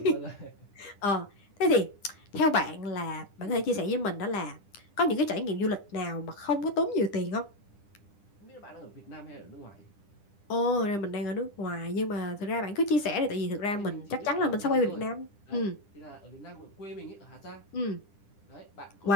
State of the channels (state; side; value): late; right; 10 ms